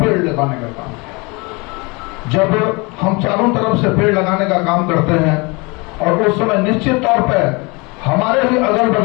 लगाने का काम किया। जब हम चारों तरफ से पेड़ लगाने का काम करते हैं और उस समय निश्चित तौर पर हमारे ही अगल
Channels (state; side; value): quieter; right; 27.6 dB